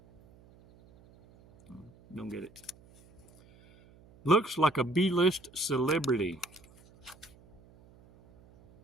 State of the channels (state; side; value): noise; right; hum, 26 dB below the sound